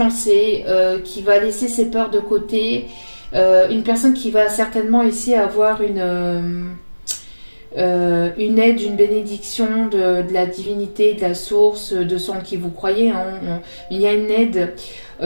qui va laisser ses peurs de côté. Une personne qui va certainement ici avoir une aide, une bénédiction de la divinité, de la source, de son qui vous croyez. Hein. Il y a une aide,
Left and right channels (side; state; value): both; inverted; correlation -1.00